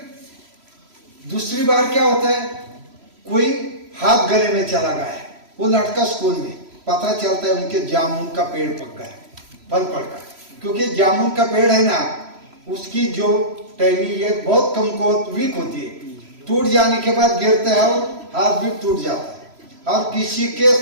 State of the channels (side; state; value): left; late; 3.0 ms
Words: दूसरी बार क्या होता है, कोई हाथ गले में चला गया है, वो लड़का स्कूल में, पता चलता है उनके जामुन का पेड़ पक गया, फल पड़ गया। क्योंकि जामुन का पेड़ है ना, उसकी जो टहनी ये बहुत कमजोर वीक होती है, टूट जाने के बाद गिरता है और हाथ भी टूट जाता है। और किसी के